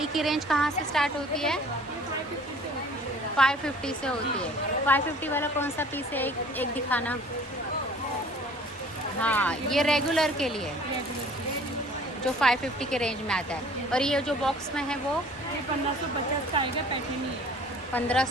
की रेंज कहाँ से स्टार्ट होती है? 550 से होती है. 550 वाला कौन सा पीस है? एक दिखाना. हाँ, ये रेगुलर के लिए जो 550 के रेंज में आता है. और ये जो बॉक्स में है वो ये 1550 का आएगा. पैटर्न ही है.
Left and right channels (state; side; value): normal; both; correlation 0.50